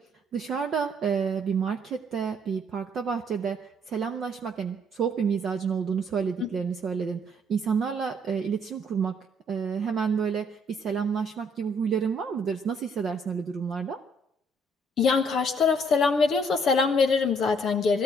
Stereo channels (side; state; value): both; normal; correlation 0.65